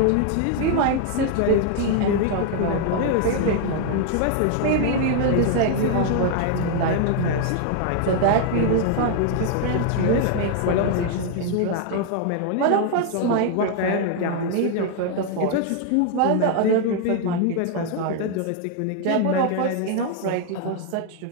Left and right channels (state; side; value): different; both; correlation 0.00